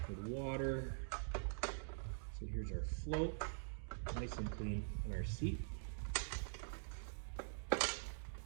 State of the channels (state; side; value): silent; left; digital silence